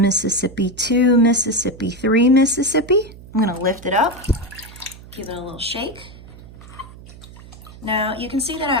Mississippi, 2 Mississippi, 3 Mississippi. I'm gonna lift it up, give it a little shake. Now you can see that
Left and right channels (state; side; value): noise; right; hum, 18 dB below the sound